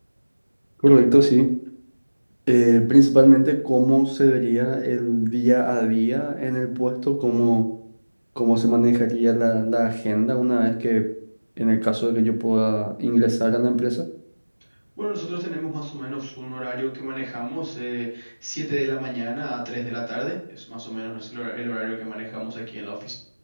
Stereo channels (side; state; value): both; inverted; correlation -1.00